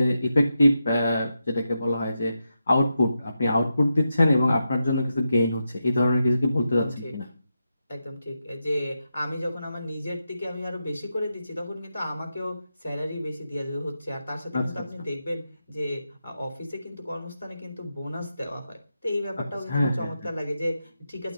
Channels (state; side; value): inverted; both; correlation -0.87